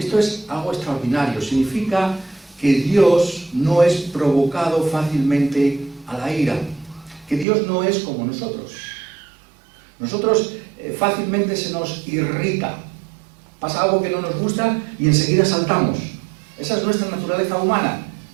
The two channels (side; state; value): left; drops out; at 7.5 s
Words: es algo extraordinario. Significa que Dios no es provocado fácilmente a la ira, que Dios no es como nosotros. Nosotros fácilmente se nos irrita, pasa algo que no nos gusta y enseguida saltamos. Esa es nuestra naturaleza humana,